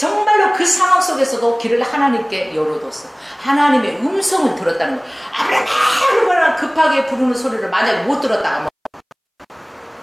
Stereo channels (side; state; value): both; identical; correlation 1.00